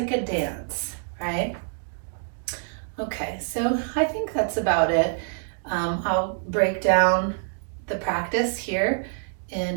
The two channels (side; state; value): left; silent; digital silence